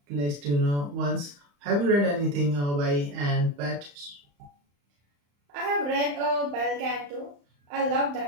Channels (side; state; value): left; late; 35 ms